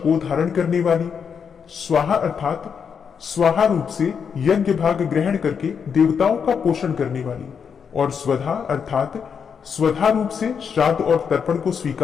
धारण करने वाली, स्वाहा अर्थात स्वाहा रूप से यज्ञ भाग ग्रहण करके देवताओं का पोषण करने वाली, और स्वधा अर्थात स्वधा रूप से श्राद्ध और तर्पण को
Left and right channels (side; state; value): right; quieter; 6.8 dB